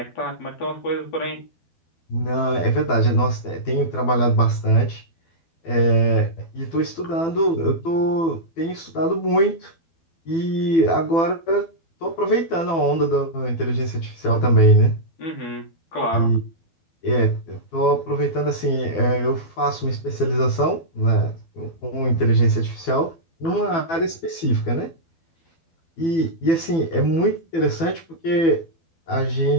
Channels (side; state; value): right; late; 12 ms